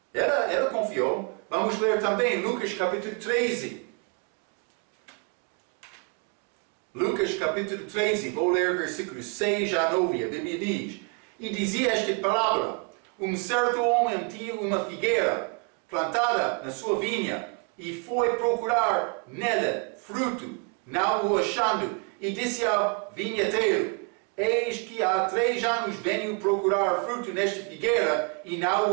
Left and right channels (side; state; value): left; quieter; 35.1 dB